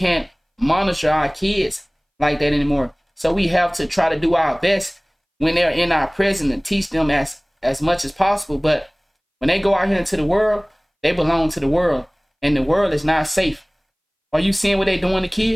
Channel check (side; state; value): both; identical; correlation 1.00